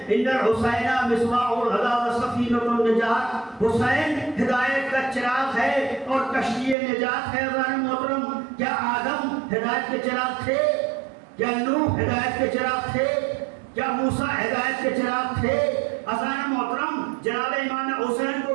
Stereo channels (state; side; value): drops out; left; at 6.8 s